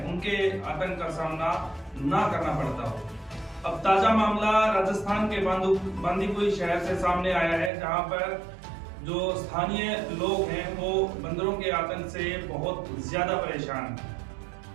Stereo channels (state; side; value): drops out; left; at 7.7 s